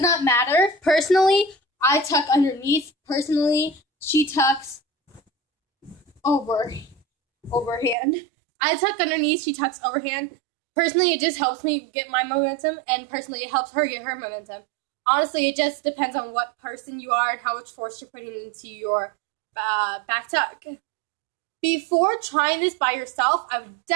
not matter. Personally, I tuck underneath. Personally, she tucks overhand. I tuck underneath, she tucks overhand. Personally, it just helps me get my momentum, and personally, it helps her get her momentum. Honestly, it just depends on what person you are and how much force you're putting into your back tuck. Before trying this by yourself, I would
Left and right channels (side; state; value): left; drops out; at 8.0 s